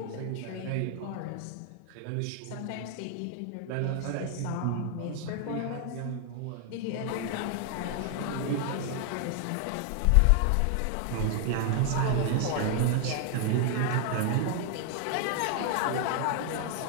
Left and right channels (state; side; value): different; both; correlation 0.00